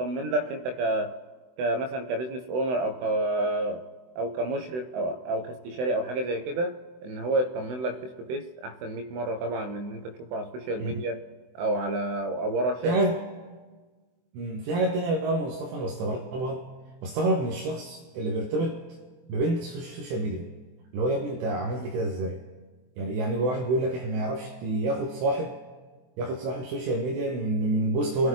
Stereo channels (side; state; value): left; late; 24 ms